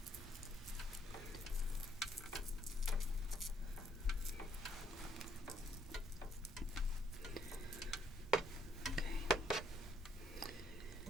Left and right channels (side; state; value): both; normal; correlation 0.69